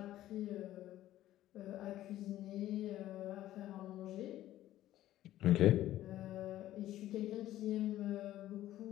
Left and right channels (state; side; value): quieter; right; 13.9 dB